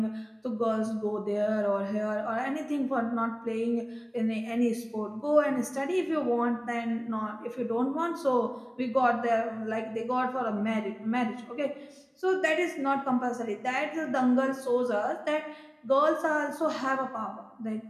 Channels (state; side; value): identical; both; correlation 1.00